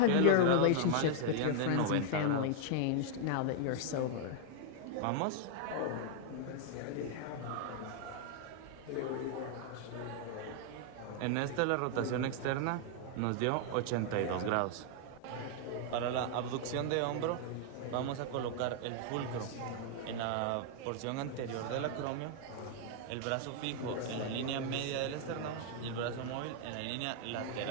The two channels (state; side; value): different; both; correlation 0.00